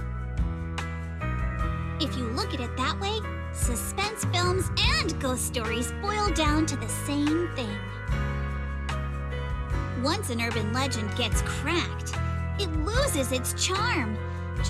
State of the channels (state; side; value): identical; both; correlation 1.00